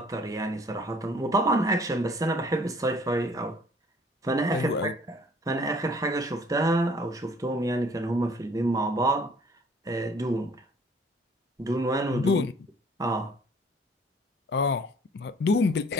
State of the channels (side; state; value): both; normal; correlation 0.55